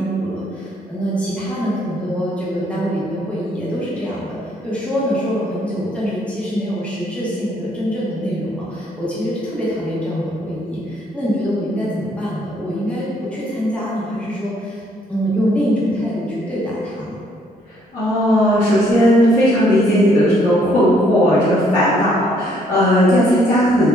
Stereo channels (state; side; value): normal; both; correlation 0.67